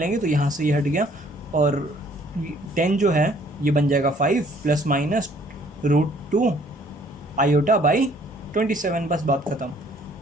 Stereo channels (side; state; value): both; normal; correlation 0.60